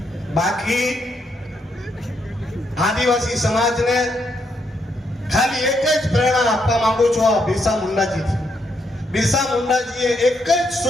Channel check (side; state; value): both; normal; correlation 0.77